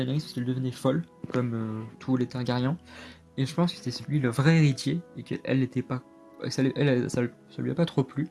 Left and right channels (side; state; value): both; identical; correlation 1.00